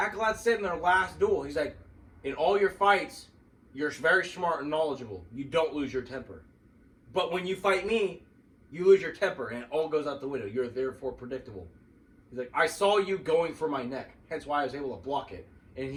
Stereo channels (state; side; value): identical; both; correlation 1.00